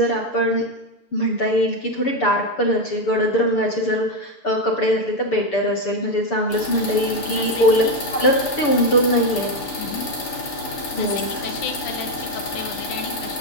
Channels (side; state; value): right; late; 6.8 ms